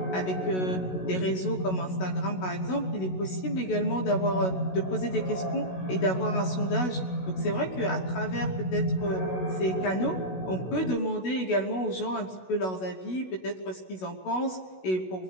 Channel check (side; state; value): right; late; 16 ms